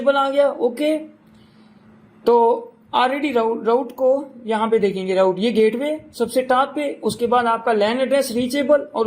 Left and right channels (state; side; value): identical; both; correlation 1.00